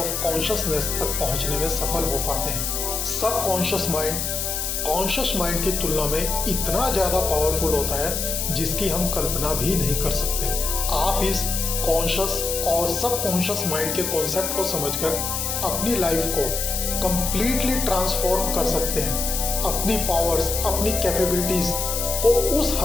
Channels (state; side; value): noise; left; hiss, 2 dB below the sound